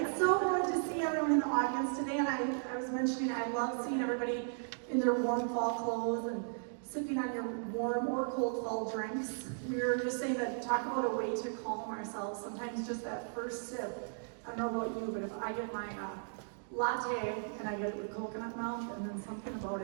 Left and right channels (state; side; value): silent; left; digital silence